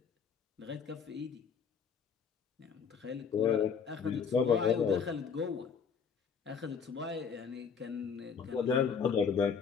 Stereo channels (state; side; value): quieter; right; 6.3 dB